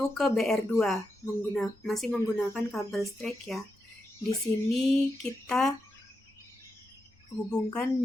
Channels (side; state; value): both; normal; correlation 0.87